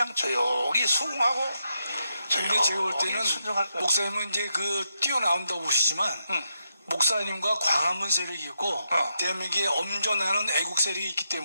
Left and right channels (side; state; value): both; inverted; correlation -0.83